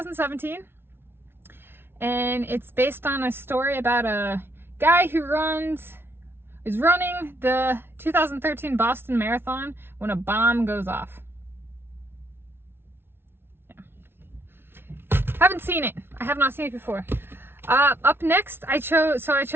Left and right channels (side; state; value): left; late; 0.11 ms